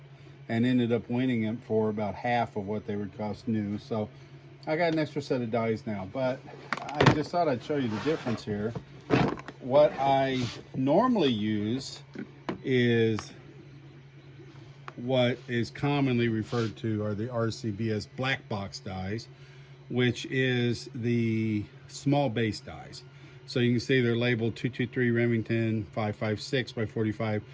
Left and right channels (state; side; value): identical; both; correlation 1.00